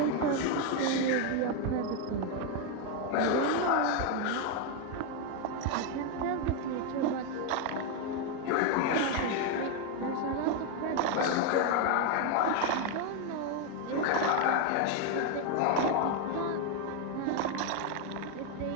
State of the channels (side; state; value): both; different; correlation 0.01